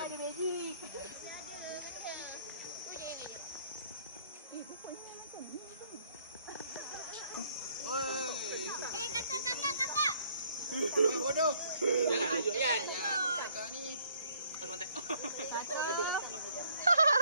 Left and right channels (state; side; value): inverted; both; correlation -0.64